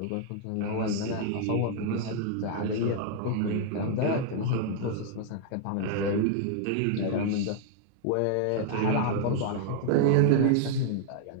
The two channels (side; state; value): both; different; correlation 0.00